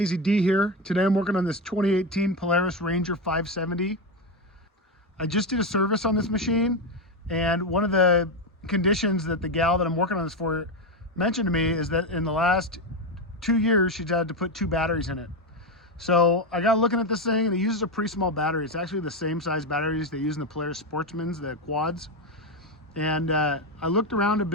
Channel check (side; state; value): both; normal; correlation 0.11